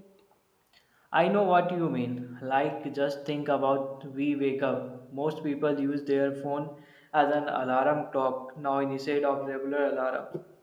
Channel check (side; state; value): both; identical; correlation 1.00